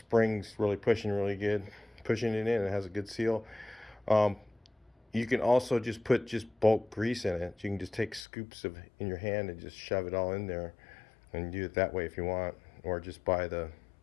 really pushing really good. Pushing it in, it has a good seal. You can also just put bulk grease in it. You can just take scoops in your hand and just shove it all in there, and do it that way if you want, or just buy the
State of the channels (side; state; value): right; drops out; at 8.2 s